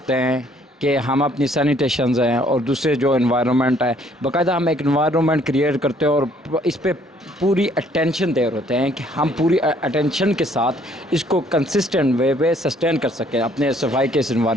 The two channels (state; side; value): normal; both; correlation 0.62